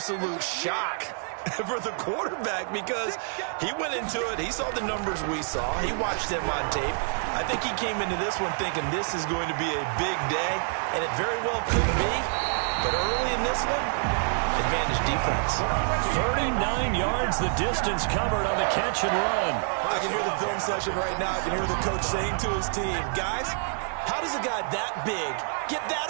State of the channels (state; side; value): silent; left; 60 dB below the other